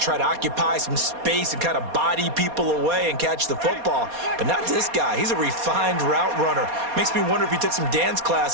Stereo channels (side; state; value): left; late; 4.2 ms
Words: to occupy some space and kind of body people away and catch the football. But not this guy. He's a refined route runner. Makes me wonder if he took some dance